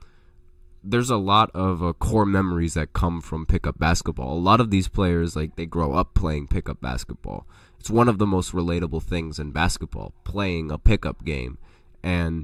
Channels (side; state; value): both; identical; correlation 1.00